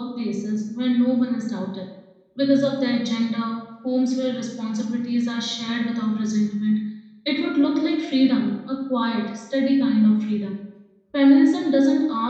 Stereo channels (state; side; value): identical; both; correlation 1.00